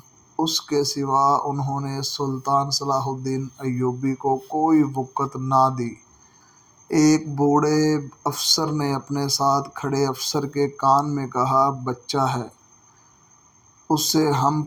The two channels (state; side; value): identical; both; correlation 1.00